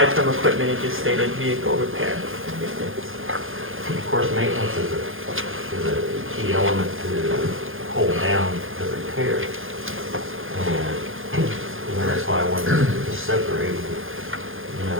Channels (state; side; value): late; left; 0.59 ms